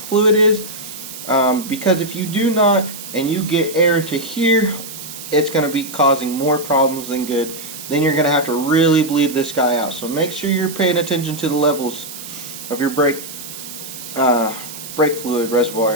is, because if you do not and you get air to here, it's going to be causing more problems than good. then you're going to have to really bleed this guy out. So make sure you're paying attention to the levels of your brake fluid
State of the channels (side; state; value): right; noise; hiss, 12 dB below the sound